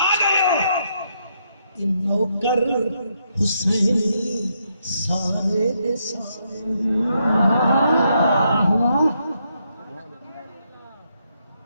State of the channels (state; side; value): inverted; both; correlation -0.77